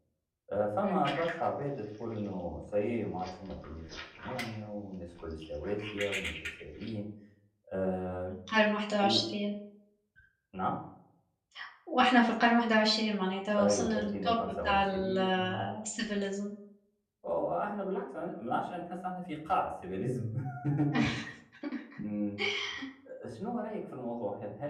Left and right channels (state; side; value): identical; both; correlation 1.00